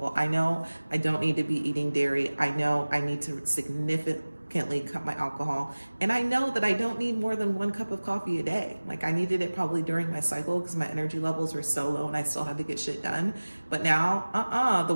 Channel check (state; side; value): inverted; both; correlation -1.00